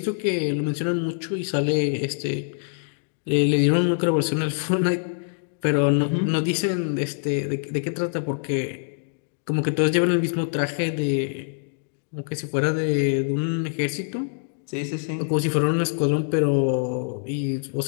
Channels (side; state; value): right; silent; digital silence